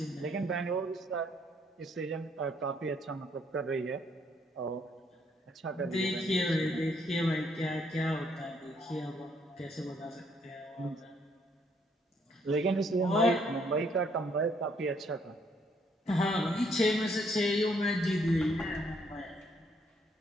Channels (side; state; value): both; normal; correlation 0.69